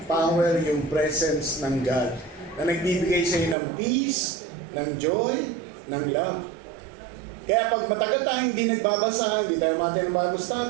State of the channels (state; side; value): drops out; left; at 3.6 s